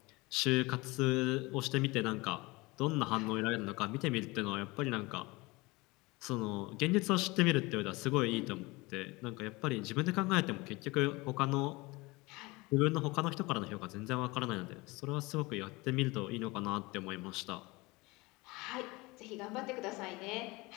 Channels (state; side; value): quieter; right; 23.6 dB